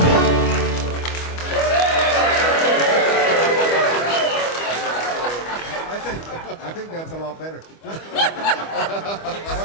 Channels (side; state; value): right; late; 25 ms